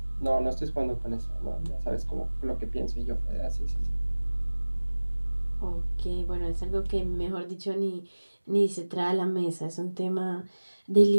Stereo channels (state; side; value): inverted; both; correlation -1.00